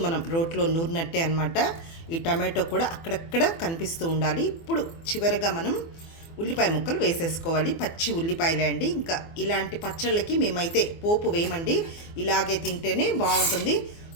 మనం రోట్లో నూరినట్టే అనమాట. ఈ టమాటో కూడా అక్కడక్కడ కనిపిస్తూ ఉండాలి. ఇప్పుడు చివరగా మనం ఉల్లిపాయ ముక్కలు వేసేసుకోవాలి. పచ్చి ఉల్లిపాయలే అండి. ఇంకా ఇలాంటి పచ్చళ్ళకి మేమైతే పోపు వేయమండి, ఇలాగే తింటేనే బాగుంటుంది.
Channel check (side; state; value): right; late; 24 ms